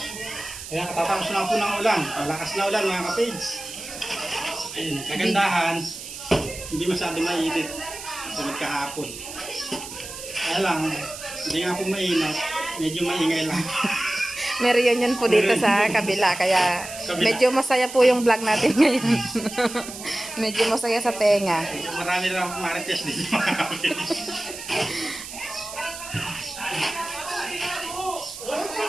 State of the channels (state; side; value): noise; right; hiss, 11 dB below the sound